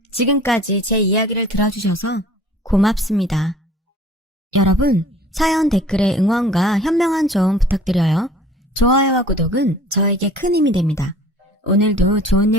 지금까지 제 이야기를 들어주셔서 고맙습니다. 여러분, 사연 댓글에 응원과 현명한 조언 부탁드려요. 좋아요와 구독은 저에게 큰 힘이 됩니다. 오늘도 좋은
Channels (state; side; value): normal; both; correlation 0.49